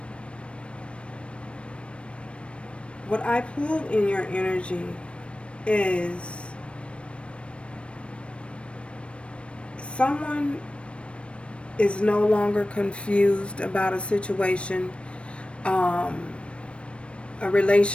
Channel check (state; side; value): late; right; 0.060 ms